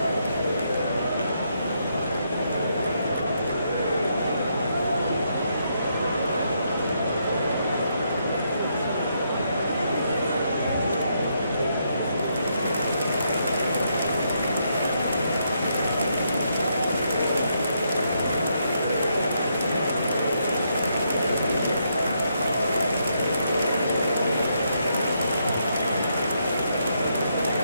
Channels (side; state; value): both; inverted; correlation -0.77